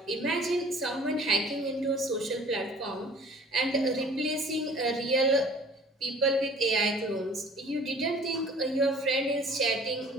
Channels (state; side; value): normal; both; correlation 0.50